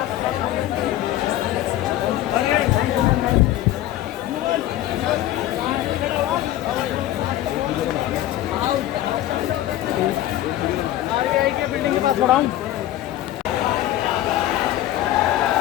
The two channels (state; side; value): quieter; right; 13.9 dB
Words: आरबीआई के बिल्डिंग के पास खड़ा हूँ।